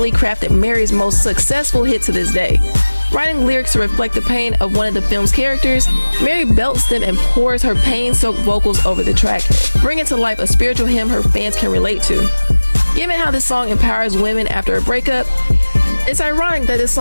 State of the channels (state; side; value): inverted; both; correlation -1.00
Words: crafted Mary's most successful hit to this day. Writing lyrics to reflect the pain of one of the film's characters, Mary belts them and pours her pain-soaked vocals over the track, bringing to life a spiritual hymn her fans can relate to. Given how this song empowers women after a breakup, it's ironic that this